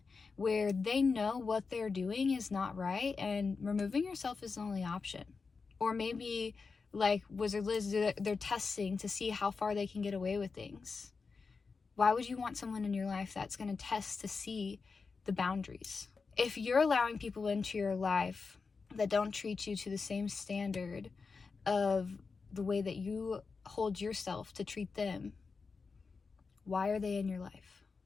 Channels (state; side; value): quieter; right; 4.7 dB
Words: where they know what they're doing is not right, and removing yourself is the only option. Or maybe, like Wizard Liz, they're testing to see how far they can get away with things. Why would you want someone in your life that's going to test to see the boundaries? If you're allowing people into your life that don't treat you to the same standard of the way that you hold yourself to treat them, why are they in your life?